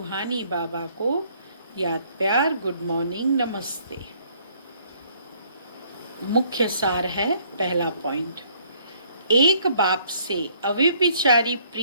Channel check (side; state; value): both; inverted; correlation -0.63